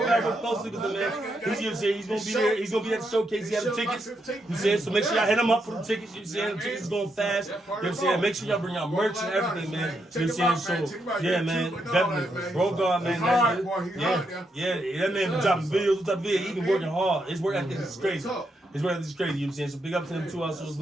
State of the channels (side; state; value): both; normal; correlation 0.81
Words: works closely with them, man. He's, you know what I'm saying? He's going to be there. He's going to be at the showcase. He has the tickets. You know what I'm saying? So make sure y'all hit him up for the tickets. You know what I'm saying? The tickets going fast. You know what I'm saying? Make sure y'all bring out merch and everything, man. You know what I'm saying? So, yeah, man, definitely. Bro God, man. That man been dropping videos. He been working hard. His work ethic is crazy. His work ethic is crazy, you know what I'm saying? So big up to them too also as